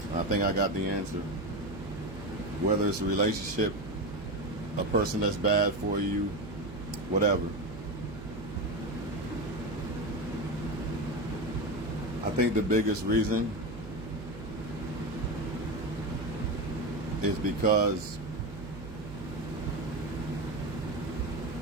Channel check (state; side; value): noise; right; hum, 12 dB below the sound